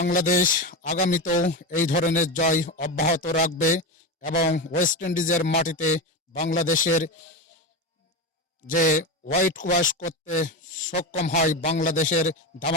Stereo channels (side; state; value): both; normal; correlation 0.19